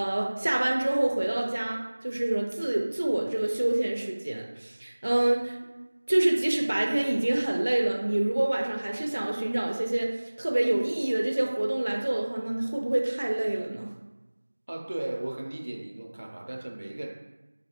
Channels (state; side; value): inverted; both; correlation -1.00